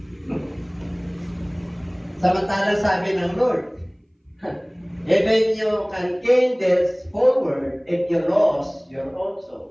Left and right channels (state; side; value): identical; both; correlation 1.00